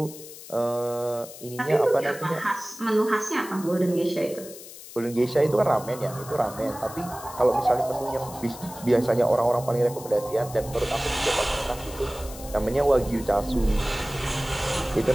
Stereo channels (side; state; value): left; noise; hiss, 15 dB below the sound